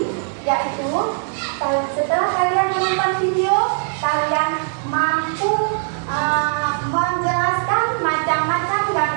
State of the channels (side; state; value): left; silent; digital silence